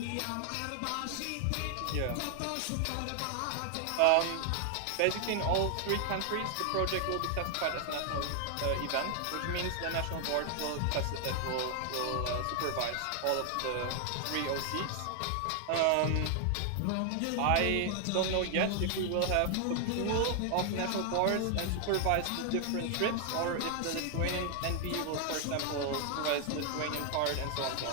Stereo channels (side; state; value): both; different; correlation 0.00